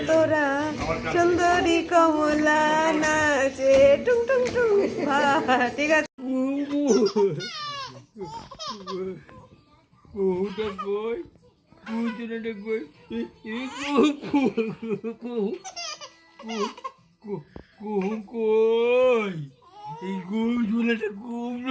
তোরা সুন্দরী কমলা নাচে টুং টুং টুং ঠিক আছে কুহুটা কই কুহুটা কই কুহু কই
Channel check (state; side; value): identical; both; correlation 1.00